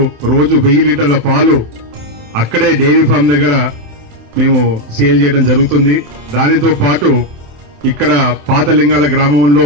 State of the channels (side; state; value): left; late; 27 ms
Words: రోజు 1000 లీటర్ల పాలు అక్కడే డైరీ ఫామ్ దగ్గర మేము సేల్ చేయడం జరుగుతుంది. దానితో పాటు ఇక్కడ పాత లింగాల గ్రామంలో